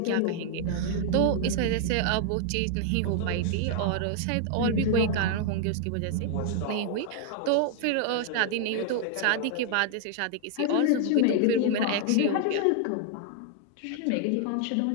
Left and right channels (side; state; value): both; different; correlation 0.00